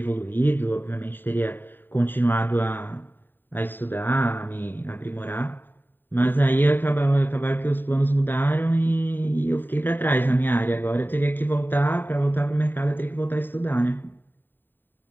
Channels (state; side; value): late; right; 0.093 ms